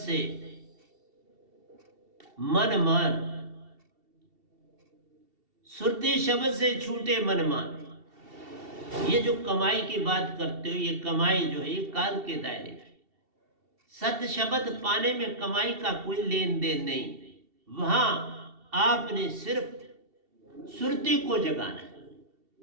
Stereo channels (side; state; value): left; late; 2.7 ms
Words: मन मान, सुरती शब्द से छूटे मन मान। ये जो कमाई की बात करते हो, ये कमाई जो है ये काल के दायरे की। सत शब्द पाने में कमाई का कोई लेन देन नहीं। वहां आपने सिर्फ सुरती को जगाना है।